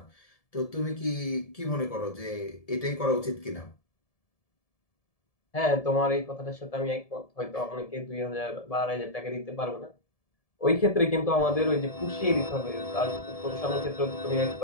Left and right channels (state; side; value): late; right; 1.7 ms